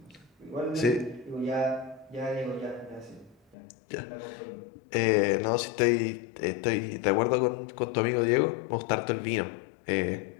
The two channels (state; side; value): drops out; right; at 3.6 s